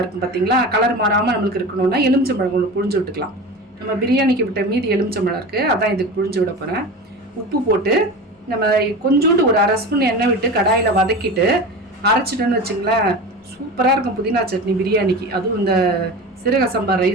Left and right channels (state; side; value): normal; both; correlation 0.30